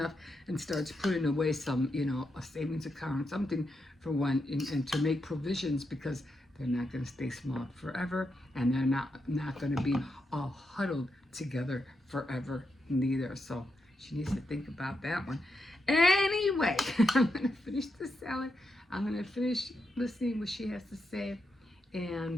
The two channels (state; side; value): normal; both; correlation 0.84